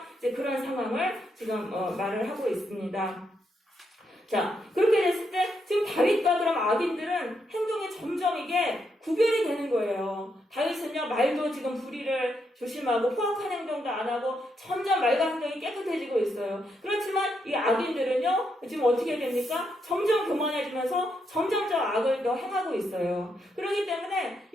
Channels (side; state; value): both; normal; correlation 0.80